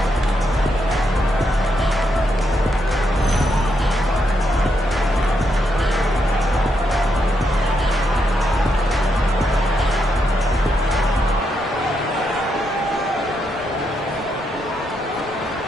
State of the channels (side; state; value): both; normal; correlation 0.80